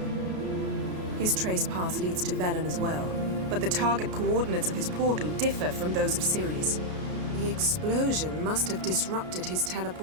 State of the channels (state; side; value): late; left; 33 ms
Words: His trace path leads to Velen as well, but the target coordinates of his portal differ from those of Ceres. The explosion must have disrupted his